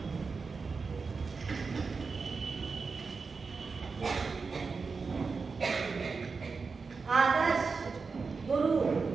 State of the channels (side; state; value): left; quieter; 4.7 dB